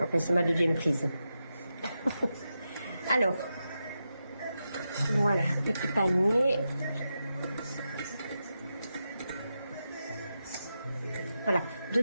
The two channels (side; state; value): both; inverted; correlation -0.89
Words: Enfin, c'est ma deuxième prise. Alors, voilà, petit panier. Voilà,